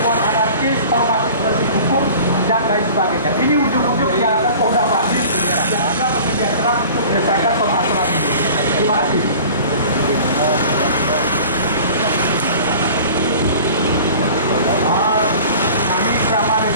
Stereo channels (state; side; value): inverted; both; correlation -0.44